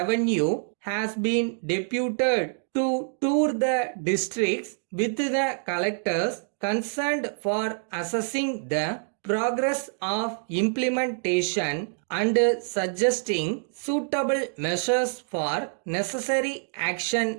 has been deputed to tour the districts with the collectors concerned for assessing the progress of implementation and suggesting suitable measures for necessary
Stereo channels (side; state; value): left; silent; digital silence